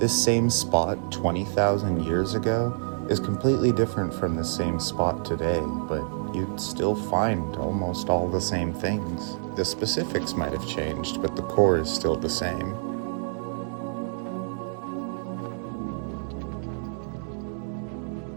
same spot 20,000 years ago is completely different from the same spot today, but you'd still find almost all the same things. The specifics might have changed, but the core is still the same.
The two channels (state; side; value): silent; left; digital silence